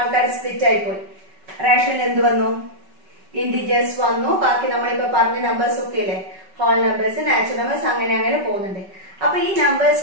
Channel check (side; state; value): left; late; 5.3 ms